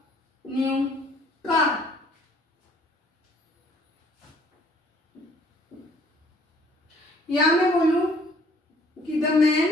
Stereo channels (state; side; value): normal; both; correlation 0.59